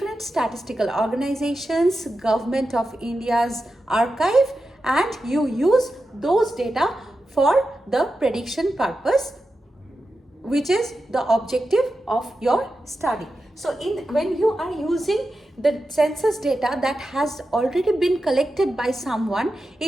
statistical organizations, Government of India's archive, and you use those data for the prediction purpose, which is the objective of your study. So when you are using the census data that has already been collected by someone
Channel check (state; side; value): normal; both; correlation 0.91